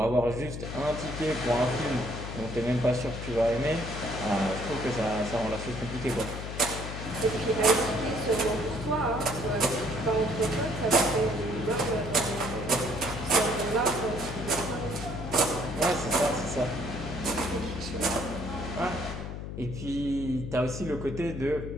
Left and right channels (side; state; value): left; noise; hum, 7 dB below the sound